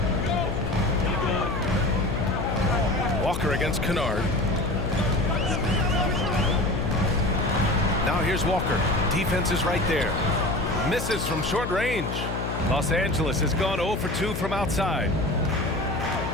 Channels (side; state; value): left; noise; hum, 4 dB below the sound